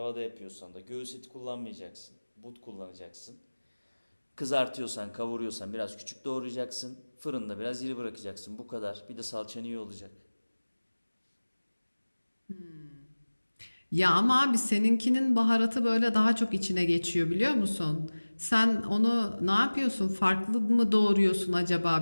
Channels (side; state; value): both; inverted; correlation -1.00